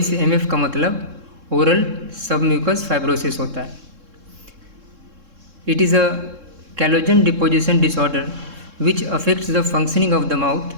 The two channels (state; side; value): late; left; 3.7 ms